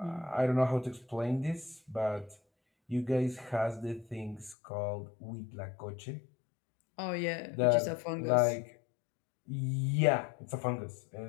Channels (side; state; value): right; drops out; at 4.5 s